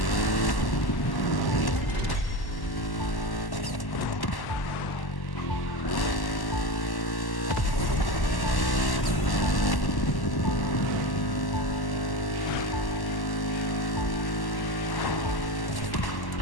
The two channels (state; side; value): late; right; 1.1 ms